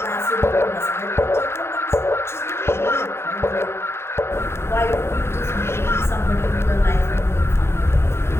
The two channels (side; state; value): right; late; 0.12 ms